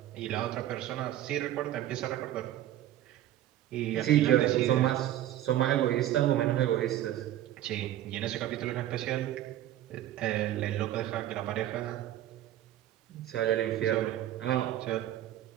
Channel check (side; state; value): left; quieter; 12.9 dB